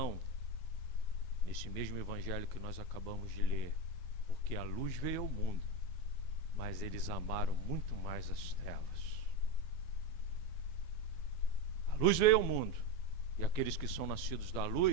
nesse mesmo evangelho que nós acabamos de ler, porque a luz veio ao mundo, mas eles amaram muito mais as trevas. A luz veio ao mundo, e aqueles que são nascidos da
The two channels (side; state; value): right; late; 12 ms